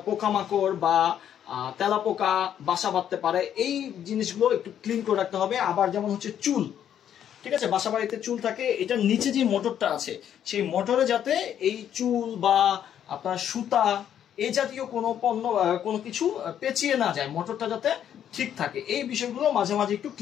পোকামাকড় বা তেলাপোকা বাসা বাঁধতে পারে, এই জিনিসগুলো একটু ক্লিন করে রাখতে হবে। আবার যেমন হচ্ছে চুল, ঠিক আছে, বাসা বাড়িতে চুল থাকে, এটার নিচে যে মোটরটা আছে সেই মোটরে যাতে এই চুল বা আপনার সুতা এই জাতীয় কোনো পণ্য কোনো কিছু পেঁচিয়ে না যায়, মোটরটা যাতে ঠিক থাকে, এই বিষয়গুলো মাঝে মাঝে একটু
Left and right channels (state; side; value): quieter; right; 9.8 dB